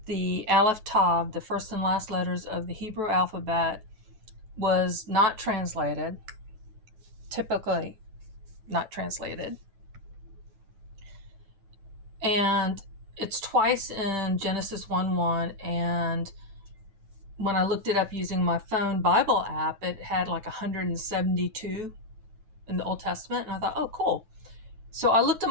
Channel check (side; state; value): left; late; 9.2 ms